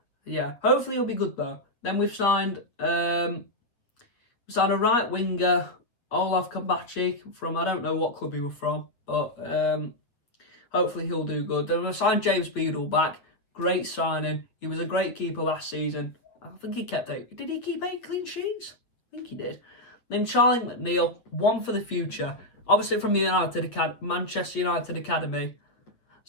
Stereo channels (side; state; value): right; late; 8.2 ms